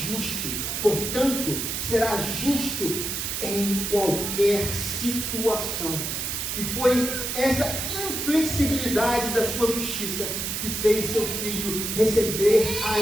portanto, será justo em qualquer situação. E foi essa inflexibilidade da sua justiça que fez seu filho receber a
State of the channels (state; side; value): noise; right; hiss, 3 dB below the sound